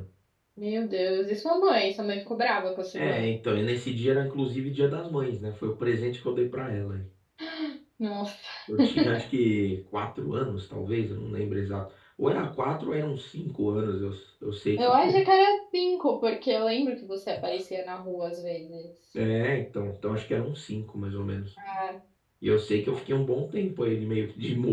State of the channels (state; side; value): identical; both; correlation 1.00